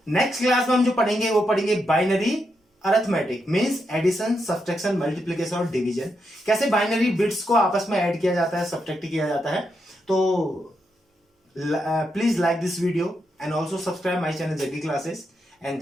नेक्स्ट क्लास में हम जो पढ़ेंगे वो पढ़ेंगे binary arithmetic, means addition, subtraction, multiplication और डिवीजन। कैसे बाइनरी बिट्स को आपस में ऐड किया जाता है, सब्ट्रैक्ट किया जाता है। तो please like this video and also subscribe my channel Jaggi classes,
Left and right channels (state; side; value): normal; both; correlation 0.83